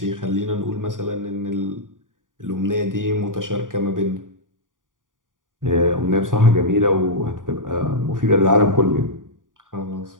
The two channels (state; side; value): late; left; 0.89 ms